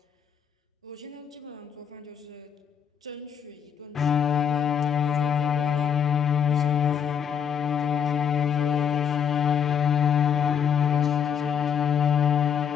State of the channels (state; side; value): quieter; right; 8.0 dB